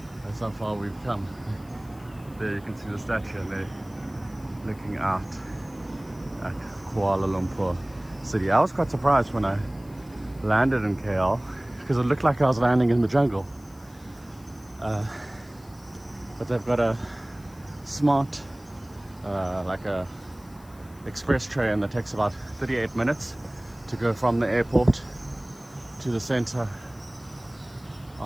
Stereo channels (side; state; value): left; noise; hiss, 26 dB below the sound